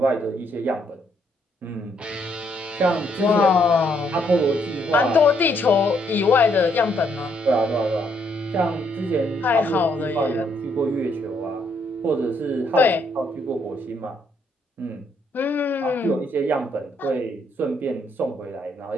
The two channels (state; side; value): normal; both; correlation 0.72